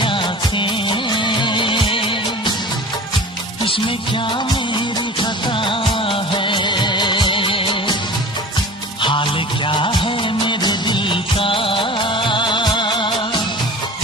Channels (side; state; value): both; normal; correlation 0.38